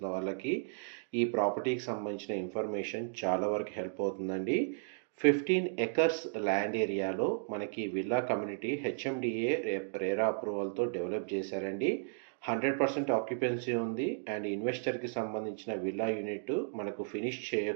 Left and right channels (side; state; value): left; silent; digital silence